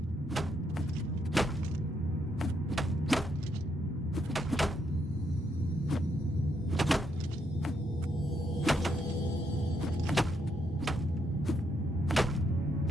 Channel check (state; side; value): normal; both; correlation 0.76